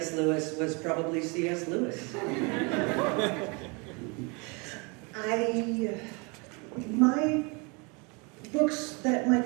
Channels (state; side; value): quieter; left; 30.6 dB